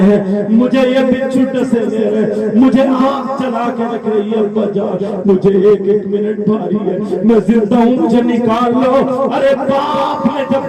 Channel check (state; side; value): identical; both; correlation 1.00